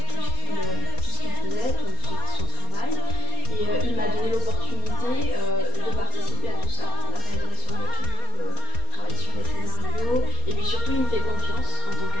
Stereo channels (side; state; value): right; late; 4.3 ms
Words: tout ce qu'il faisait, tout son travail et il m'a donné l'opportunité de participer à tout ça, la réalisation de clips, travailler sur les scénarios et puis surtout il me fait confiance en tant